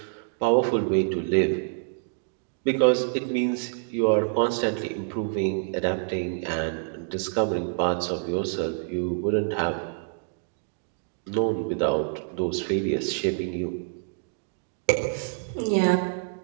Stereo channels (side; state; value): left; silent; digital silence